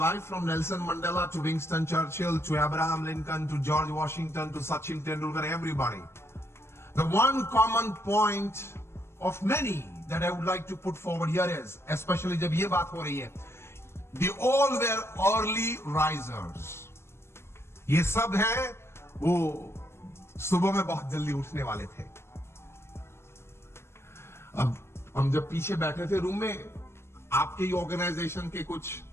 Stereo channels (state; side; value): late; right; 0.12 ms